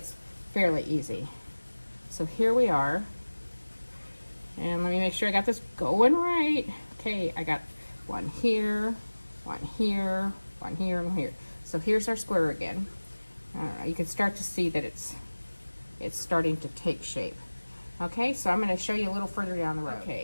fairly easy. So here we are. And let me make sure I got this going right. Okay, I got one here, one here, one here, and one here. So here's our square again. I don't know, you can start to see that it's starting to take shape. Okay, so I'm gonna show you a little further down the road.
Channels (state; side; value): inverted; both; correlation -1.00